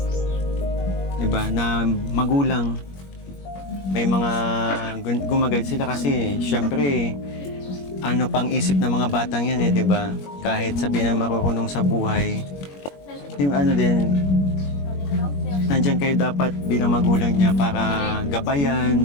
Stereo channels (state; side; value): late; right; 21 ms